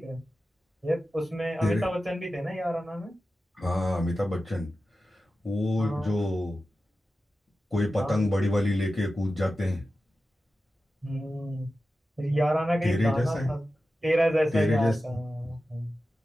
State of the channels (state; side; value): normal; both; correlation 0.93